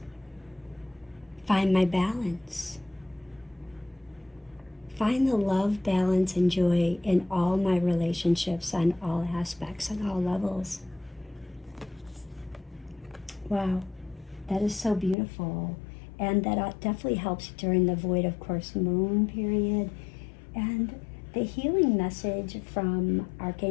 find my balance, find the love, balance, and joy in all my relationships on all aspects, on all levels. Wow, that is so beautiful. And that definitely helps during the void of course moon period. And the healing message from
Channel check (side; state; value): right; drops out; at 15.2 s